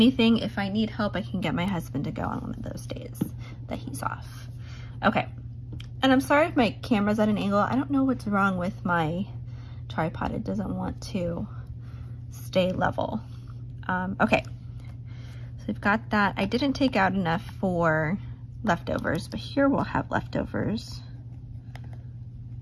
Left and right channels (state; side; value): identical; both; correlation 1.00